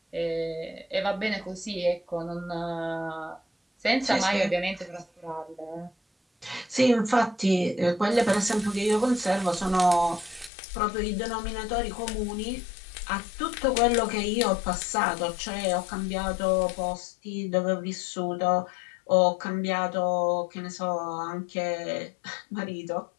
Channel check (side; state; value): right; drops out; at 10.5 s